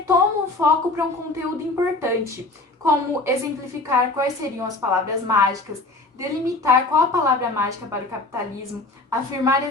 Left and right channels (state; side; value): quieter; right; 3.0 dB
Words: o foco para um conteúdo importante, como exemplificar quais seriam as palavras mágicas, delimitar qual a palavra mágica para o capitalismo, afirmar a